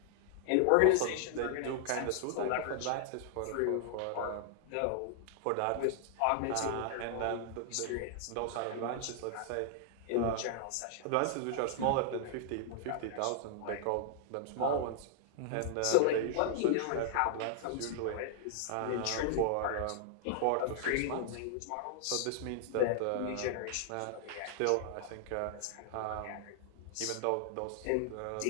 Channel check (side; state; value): both; different; correlation -0.01